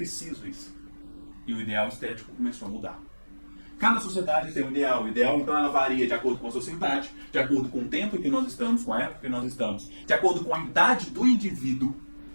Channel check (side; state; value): both; inverted; correlation -1.00